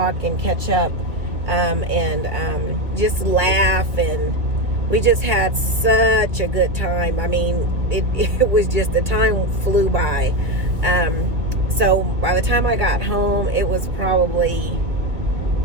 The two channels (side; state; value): left; late; 2.0 ms